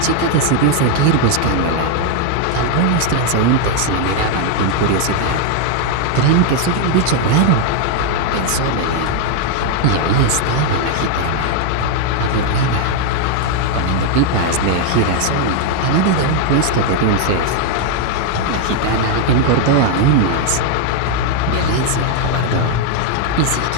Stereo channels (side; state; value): both; different; correlation 0.00